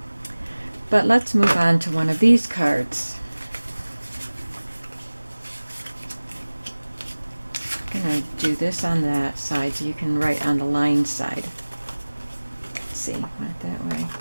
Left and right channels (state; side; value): inverted; both; correlation -1.00